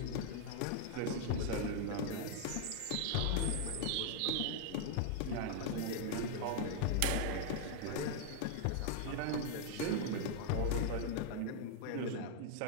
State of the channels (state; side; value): different; both; correlation 0.00